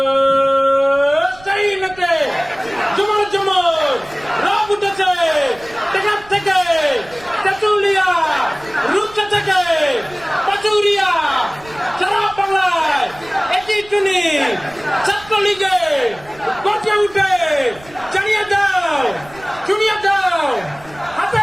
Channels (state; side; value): noise; right; rumble, 23 dB below the sound